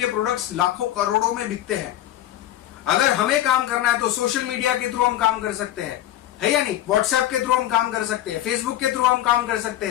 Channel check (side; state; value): right; quieter; 13.3 dB